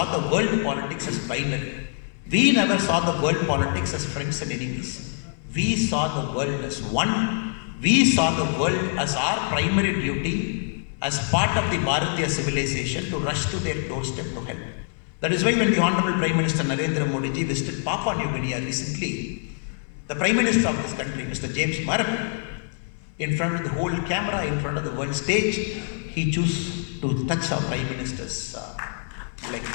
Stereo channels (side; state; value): right; silent; 62 dB below the other